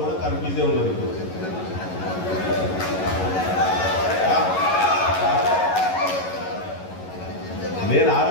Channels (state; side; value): late; right; 11 ms